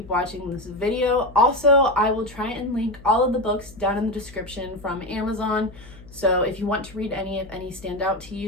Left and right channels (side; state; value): left; noise; hum, 20 dB below the sound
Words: watching this video. Also, I will try and link all of the books down in the description from Amazon. So if you want to read any, if any stand out to